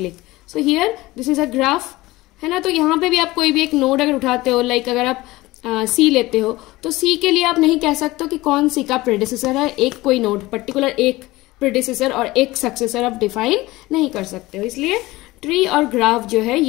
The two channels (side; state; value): right; quieter; 19.3 dB